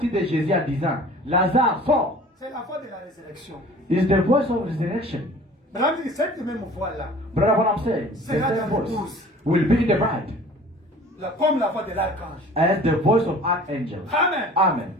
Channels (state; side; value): normal; both; correlation 0.46